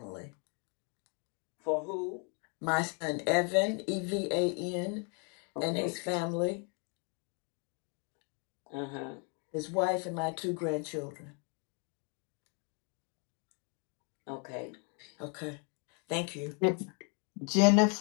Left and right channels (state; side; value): quieter; right; 36.8 dB